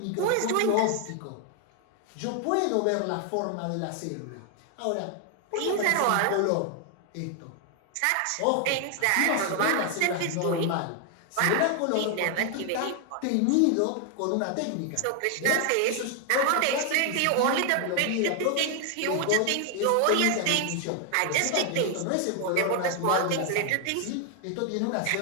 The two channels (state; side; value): different; both; correlation 0.00